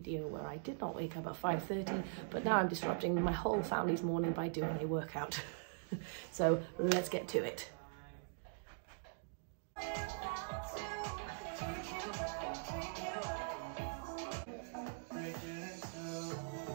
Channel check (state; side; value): silent; left; digital silence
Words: where I did not wake up at 5:30, but now I'm disrupting my whole family's morning by doing a workout. So let's get to it.